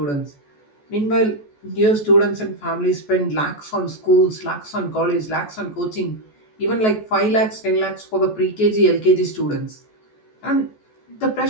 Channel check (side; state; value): right; late; 14 ms